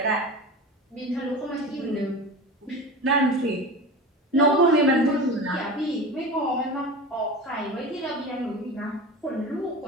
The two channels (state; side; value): normal; both; correlation 0.30